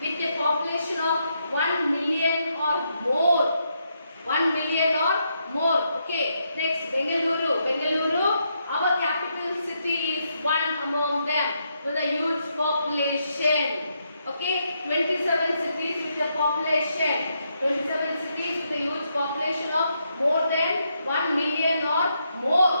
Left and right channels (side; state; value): both; inverted; correlation -0.79